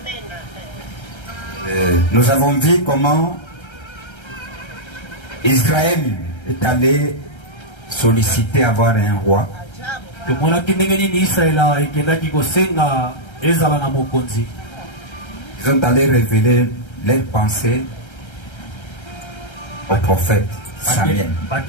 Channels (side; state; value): right; late; 1.3 ms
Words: Nous avons vu comment Israël est allé solliciter avoir un roi. Ils ont allé révéler leurs pensées au prophète Samuel.